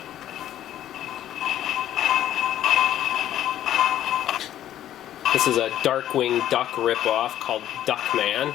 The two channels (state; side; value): quieter; right; 11.9 dB